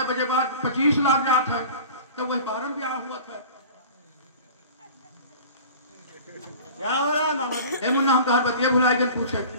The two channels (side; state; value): both; inverted; correlation -0.41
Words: बजे बाद 25 लाख जात है, तो वही 12 ब्याह हुआ था। क्या हो रहा है मामा जी? ए मुन्ना, हम कहा बतिया भुलाई गए पूछे।